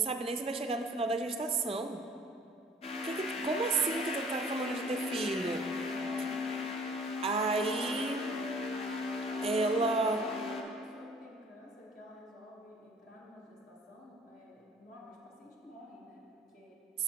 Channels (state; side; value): normal; both; correlation 0.53